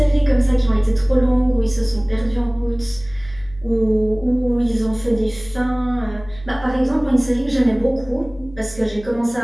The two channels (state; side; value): noise; left; hum, 19 dB below the sound